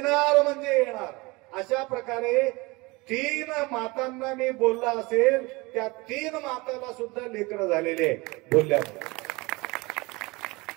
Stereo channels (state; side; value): quieter; left; 24.2 dB